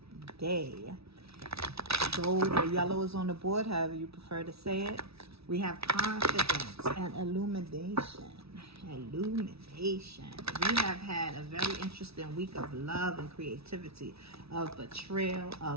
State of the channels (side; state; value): left; late; 0.78 ms